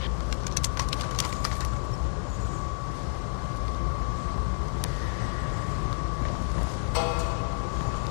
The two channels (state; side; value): silent; right; digital silence